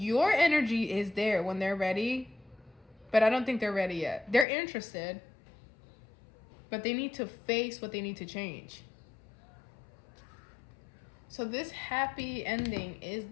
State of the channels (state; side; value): drops out; right; at 4.5 s